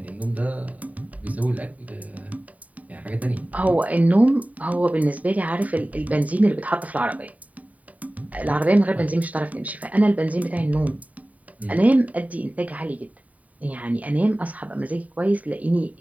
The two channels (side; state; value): left; late; 0.070 ms